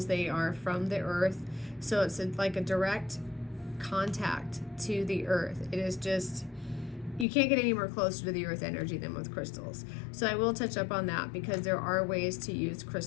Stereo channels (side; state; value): right; drops out; at 7.2 s